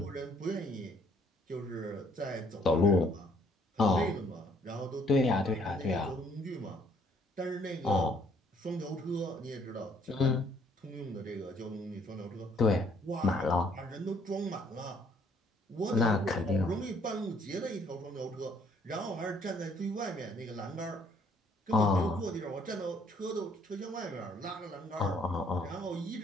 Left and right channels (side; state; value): both; normal; correlation 0.64